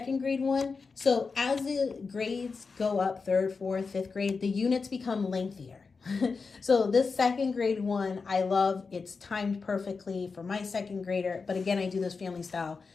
grade one. So as the grades go up, 3rd, 4th, 5th grade, the units become lengthier. So this 2nd grade one, I love. It's timed perfectly for my 2nd grader. But again, I do this family style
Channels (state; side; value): quieter; right; 4.7 dB